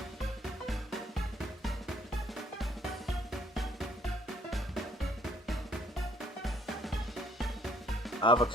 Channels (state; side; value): normal; both; correlation 0.63